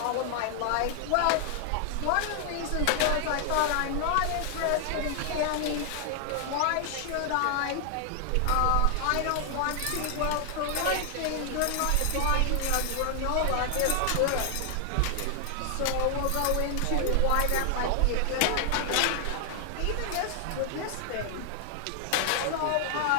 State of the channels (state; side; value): different; both; correlation 0.00